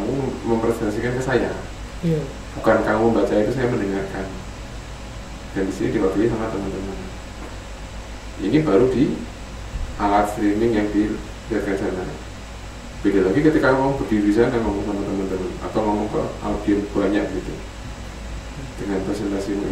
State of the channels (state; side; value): identical; both; correlation 1.00